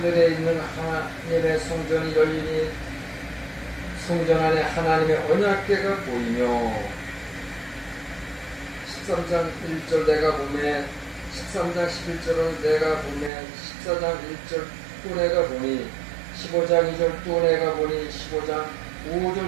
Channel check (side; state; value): left; drops out; at 13.3 s